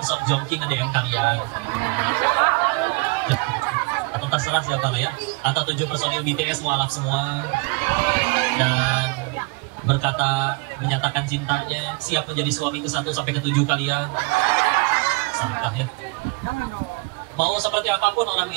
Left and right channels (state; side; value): quieter; left; 27.7 dB